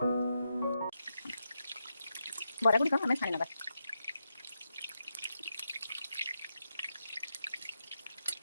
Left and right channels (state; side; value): inverted; both; correlation -0.86